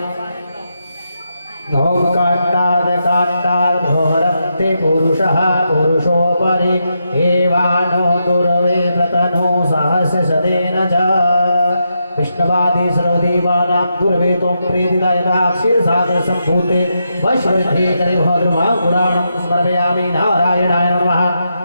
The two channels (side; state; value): both; inverted; correlation -0.84